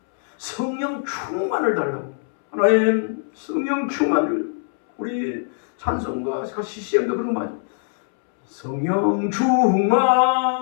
성령 충만을 달라고. 하나님 성령 충만을 우리 찬송과 CCM도 그런 거 맞아요. 성령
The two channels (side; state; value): right; silent; 64 dB below the other